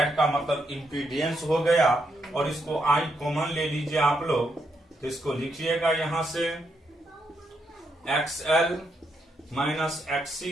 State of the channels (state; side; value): normal; both; correlation 0.79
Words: का मतलब इम्पीडियंस हो गया, और इसको I कॉमन ले लीजिए आप लोग, तो इसको लिखिएगा यहां से XL माइनस